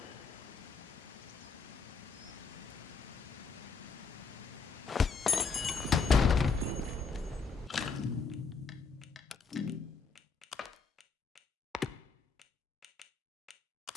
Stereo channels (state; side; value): quieter; right; 4.8 dB